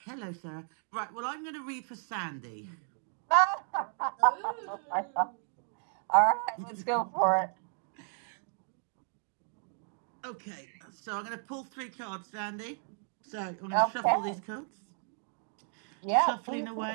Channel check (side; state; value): left; silent; 55 dB below the other